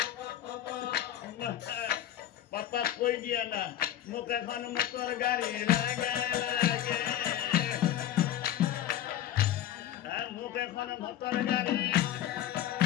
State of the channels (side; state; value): right; quieter; 11.9 dB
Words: পাপাক কৈ দিয়া না মোক এখন মটৰ গাড়ী লাগে মোক এখন মটৰ গাড়ী